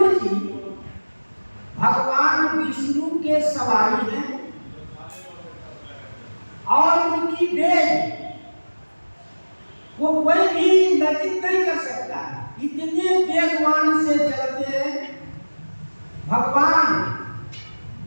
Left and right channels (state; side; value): inverted; both; correlation -1.00